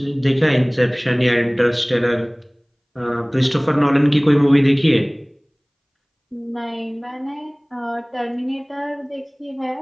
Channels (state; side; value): identical; both; correlation 1.00